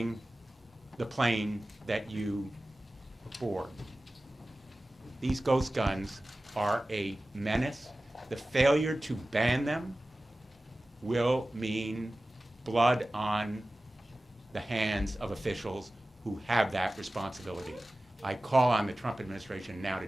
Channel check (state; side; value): normal; both; correlation 0.96